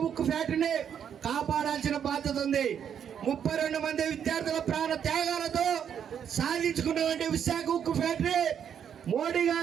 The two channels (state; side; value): quieter; left; 8.4 dB